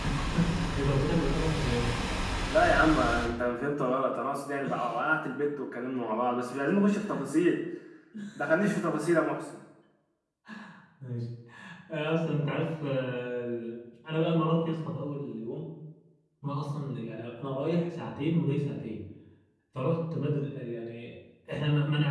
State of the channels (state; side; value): identical; both; correlation 1.00